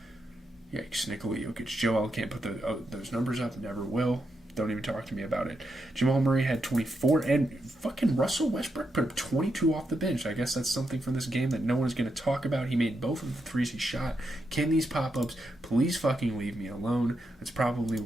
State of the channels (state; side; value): normal; both; correlation 0.84